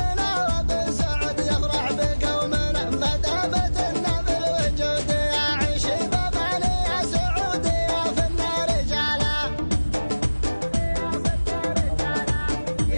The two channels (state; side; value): inverted; both; correlation -1.00